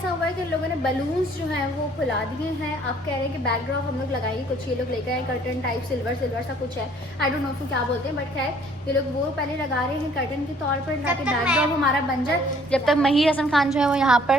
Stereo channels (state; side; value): normal; both; correlation 0.58